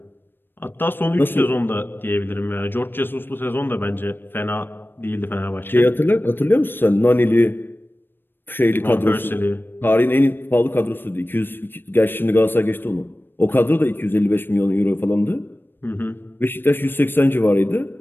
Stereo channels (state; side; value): late; right; 0.097 ms